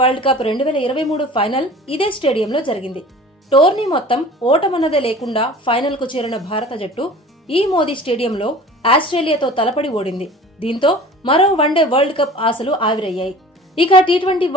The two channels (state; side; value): normal; both; correlation 0.43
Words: world cup 2023 final ఇదే స్టేడియంలో జరిగింది. టోర్నీ మొత్తం ఓటమన్నదే లేకుండా ఫైనల్ కు చేరిన భారత జట్టు ఈ మోదీ స్టేడియంలో ఆస్ట్రేలియాతో తలపడి ఓడింది. దీంతో మరో వన్డే వరల్డ్ కప్ ఆశలు ఆవిరయ్యాయి. ఇక టీ20